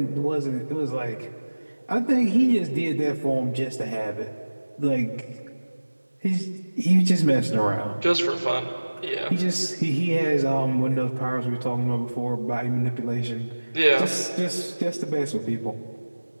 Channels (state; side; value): inverted; both; correlation -1.00